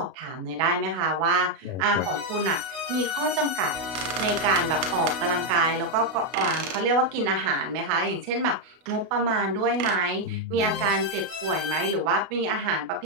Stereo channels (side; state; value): left; late; 32 ms